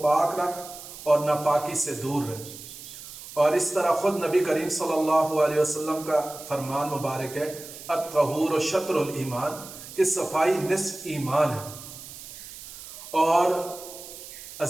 پاک رکھ اور ناپاکی سے دور رہ۔ اور اس طرح خود نبی کریم صلی اللہ علیہ وسلم کا فرمان مبارک ہے الطہور شطر الایمان، کہ صفائی نصف ایمان ہے۔ اور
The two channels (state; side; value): noise; right; hiss, 14 dB below the sound